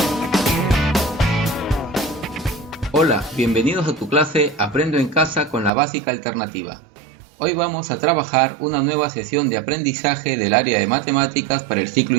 Hola, bienvenidos a tu clase Aprendo en Casa con la básica alternativa. Hoy vamos a trabajar una nueva sesión de aprendizaje del área de matemáticas para el ciclo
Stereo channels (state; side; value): drops out; left; at 5.7 s